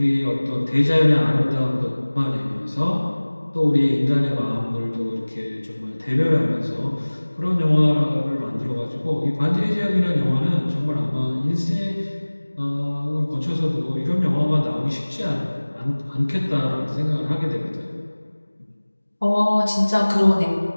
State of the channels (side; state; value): both; inverted; correlation -1.00